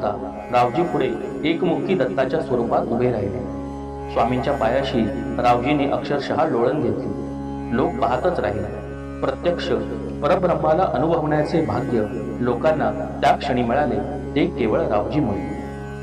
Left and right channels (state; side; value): identical; both; correlation 1.00